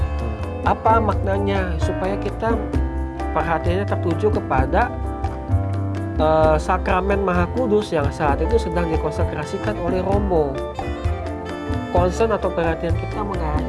apa maknanya? Supaya kita perhatiannya tertuju kepada sakramen Maha Kudus yang saat itu sedang dikonsekrasikan oleh Romo. Concern atau perhatian kita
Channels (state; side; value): identical; both; correlation 1.00